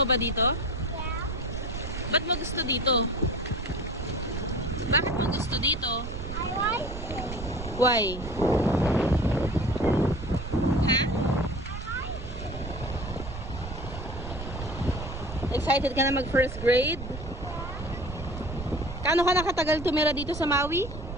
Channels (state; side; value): noise; right; rumble, 8 dB below the sound